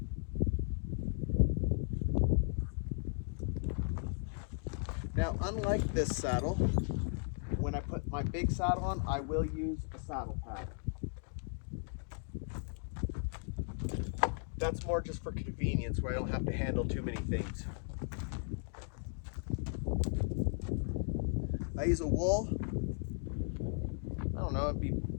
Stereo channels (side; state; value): right; silent; 53 dB below the other